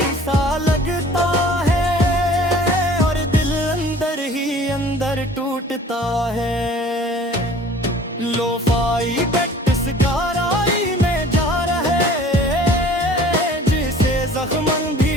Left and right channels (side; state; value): both; normal; correlation 0.49